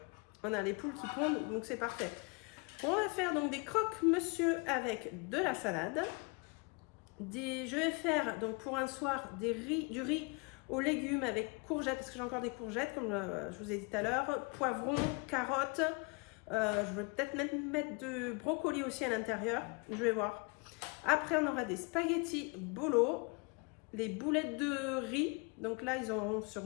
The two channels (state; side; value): quieter; right; 30.6 dB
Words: On a les poules qui pondent, donc c'est parfait. On va faire donc des croque-monsieur avec de la salade. Je vais faire donc pour un soir du riz aux légumes avec courgettes, parce que j'ai encore des courgettes, comme je vous ai dit tout à l'heure, poivrons, carottes, je vais peut-être mettre de brocoli aussi à l'intérieur, je vais voir. Après, on aura des spaghettis bolo, les boulettes de riz, donc là, ils auront sur